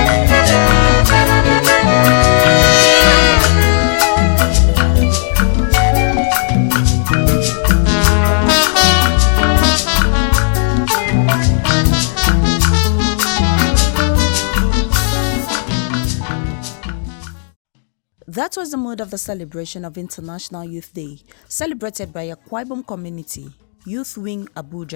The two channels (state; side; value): silent; right; digital silence